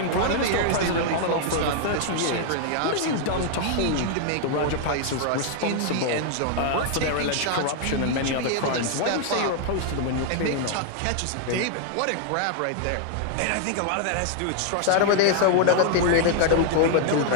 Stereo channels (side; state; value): both; different; correlation 0.00